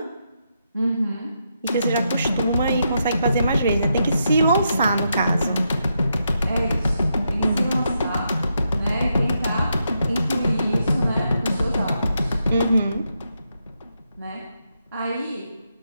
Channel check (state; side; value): inverted; both; correlation -0.82